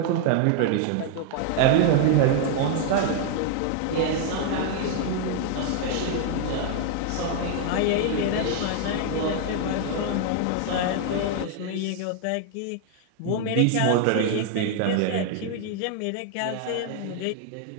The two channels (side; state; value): both; different; correlation 0.00